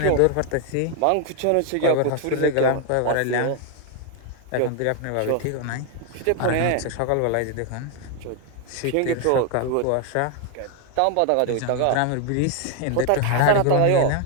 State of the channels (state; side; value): different; both; correlation 0.01